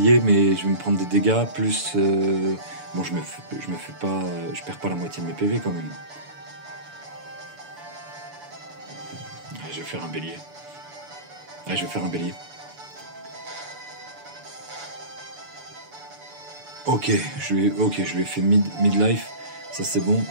mais je vais me prendre des dégâts, plus... Bon, je perds pas la moitié de mes PV quand même. Allez, je vais faire un bélier. Ok, je lui ai fait midlife, ça c'est bon.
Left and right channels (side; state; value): left; late; 6.9 ms